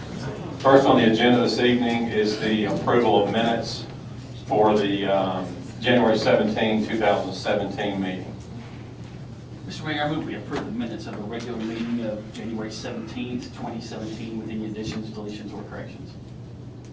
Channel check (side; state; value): both; identical; correlation 1.00